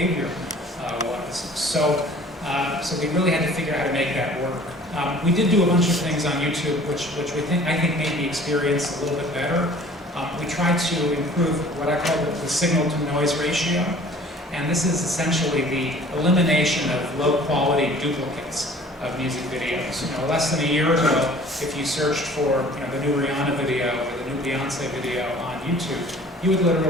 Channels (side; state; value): both; normal; correlation 0.49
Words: was. So we really had to figure out how to make that work. We did do a bunch of things on YouTube, which I think made the experience a little bit better. We tried to improve what I call the signal-to-noise ratio, and this is essentially the elimination of low-quality duplicates of music videos. Less than a year ago, if you searched for the new Rihanna video or the new Beyonce video on YouTube, you would